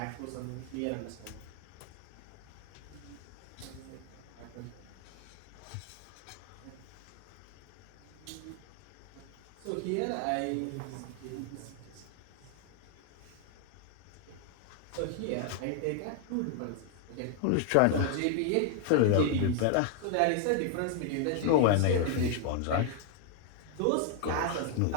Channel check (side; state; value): both; different; correlation 0.00